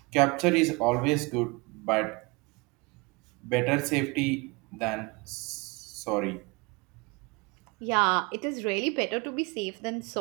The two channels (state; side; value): quieter; left; 27.5 dB